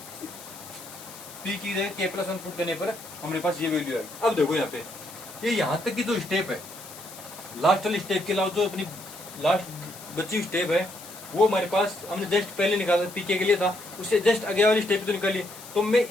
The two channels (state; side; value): noise; left; hiss, 16 dB below the sound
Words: पी की जगह के प्लस 1 पुट करने पर हमारे पास ये वैल्यू है। अब देखो यहाँ पे ये यहाँ तक की जो स्टेप है, लास्ट वाली स्टेप के अलावा जो अपनी लास्ट बची हुई स्टेप है, वो हमारे पास हमने जस्ट पहले निकाला पीके के लिए था, उससे जस्ट आगे वाली स्टेप तो निकाली। तो मैं